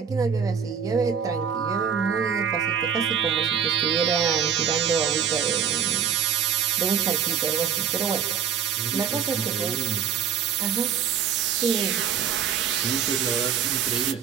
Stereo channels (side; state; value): left; quieter; 7.7 dB